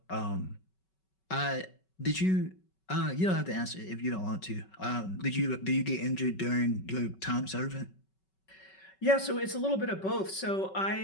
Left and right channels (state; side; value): late; right; 5.3 ms